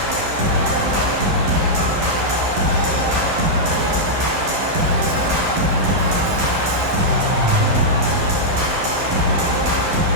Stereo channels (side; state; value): left; late; 11 ms